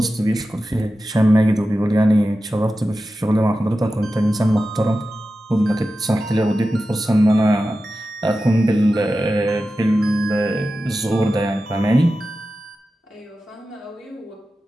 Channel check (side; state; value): both; normal; correlation 0.93